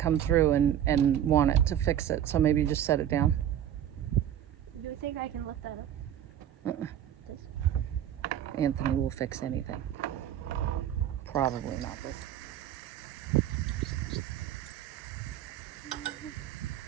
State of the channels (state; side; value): quieter; left; 10.6 dB